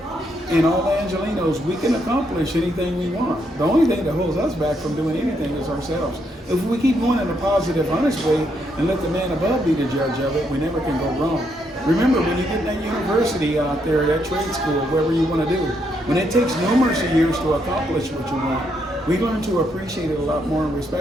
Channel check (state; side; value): normal; both; correlation 0.76